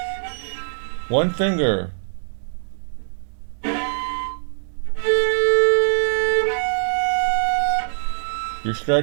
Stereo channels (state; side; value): silent; left; digital silence